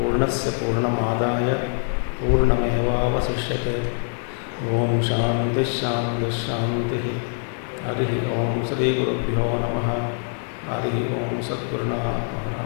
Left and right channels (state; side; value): silent; right; 63 dB below the other